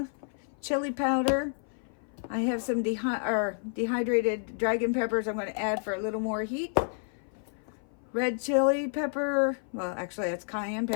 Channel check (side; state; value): right; silent; 55 dB below the other